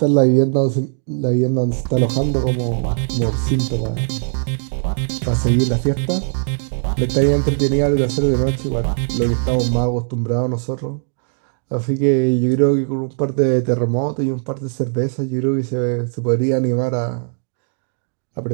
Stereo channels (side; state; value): left; silent; digital silence